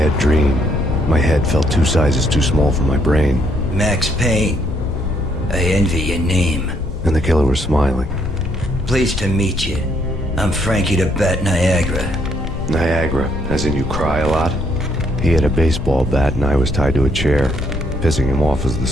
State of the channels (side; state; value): left; noise; rumble, 7 dB below the sound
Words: dream. My head felt 2 sizes too small for my brain. Max Payne. I envy your name. And the killer was smiling. Pleased to meet you. I'm Frankie the Bat Niagara. Niagara, as in you cry a lot? He had a baseball bat and I was tied to a chair. Pissing him off was the